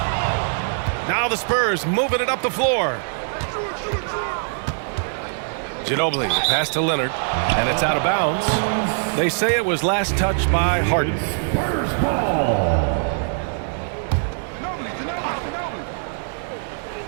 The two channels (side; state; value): left; silent; 61 dB below the other